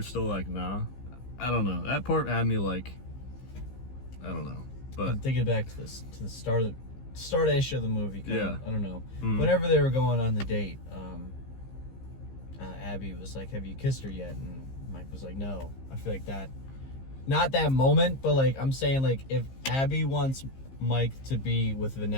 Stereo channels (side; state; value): right; late; 15 ms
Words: still like, nah, I don't know, that part had me like, I don't know. But I'm thinking back to the start of start-ish of the movie. Yeah. I don't know. Whenever they were going on the date, Abby was like, "Have you kissed her yet?" And Mike was like, "No." I feel like that, not that moment, but like I'm saying, like if Abby wants Mike to be with